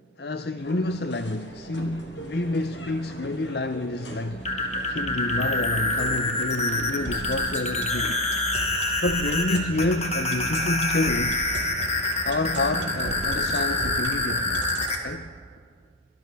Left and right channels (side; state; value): both; normal; correlation 0.14